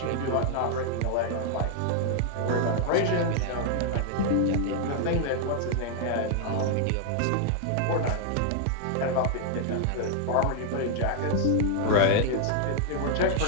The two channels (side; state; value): both; different; correlation 0.00